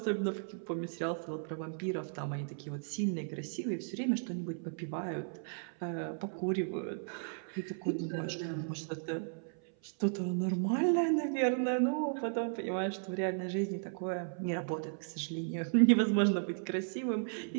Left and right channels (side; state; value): left; silent; 54 dB below the other